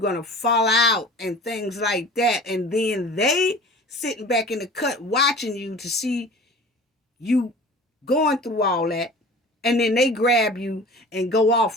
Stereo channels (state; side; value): normal; both; correlation 0.41